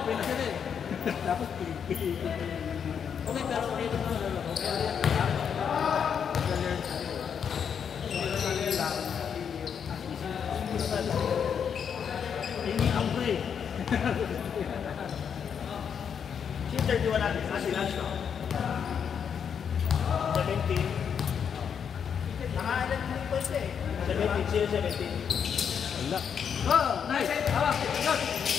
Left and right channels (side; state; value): right; quieter; 7.4 dB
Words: na sila eh. Tapos pili. Okay, pero dito na lang. Ini ang pre. Yung 31 natin, kasi lunch no? 17. Nakaalan din po ito eh. 17, 17. Wala. Oh, nice. Hawak. Good.